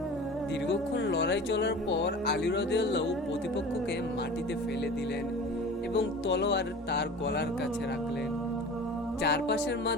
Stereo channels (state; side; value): normal; both; correlation 0.38